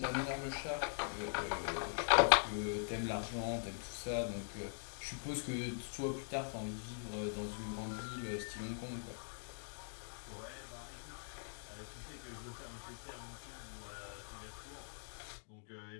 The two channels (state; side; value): silent; right; digital silence